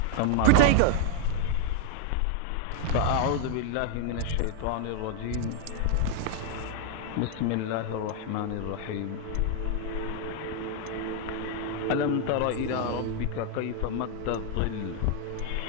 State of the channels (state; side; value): different; both; correlation 0.00